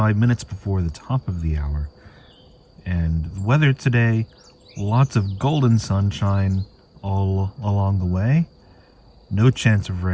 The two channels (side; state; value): both; identical; correlation 1.00